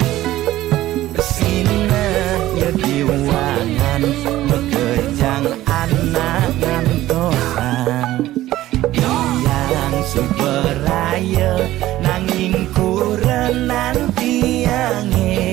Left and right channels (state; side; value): quieter; left; 15.2 dB